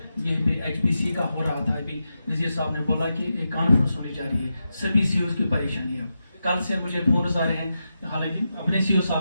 यहीं पे HPC का हो रहा था, अभी नजीर साहब ने बोला कि एक कॉन्फ्रेंस होने जा रही है, सभी CEOs की परेशानी है। कल से मुझे फोन आ रहे हैं, हालांकि अपने CEO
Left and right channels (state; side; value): inverted; both; correlation -0.89